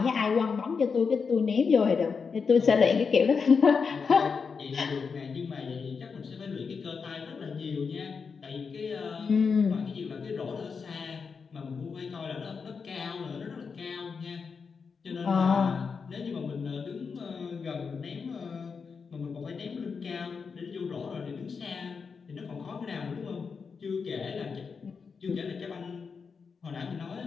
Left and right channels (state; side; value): quieter; right; 5.5 dB